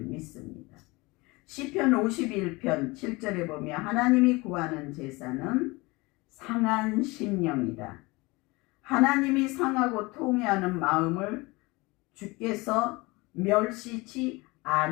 믿습니다. 시편 51편 7절에 보면 하나님이 구하는 제사는 상한 심령이다. 하나님이 상하고 통회하는 마음을 주께서 멸시치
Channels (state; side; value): quieter; right; 23.8 dB